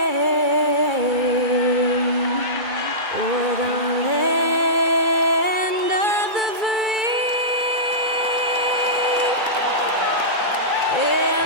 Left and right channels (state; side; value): late; left; 2.3 ms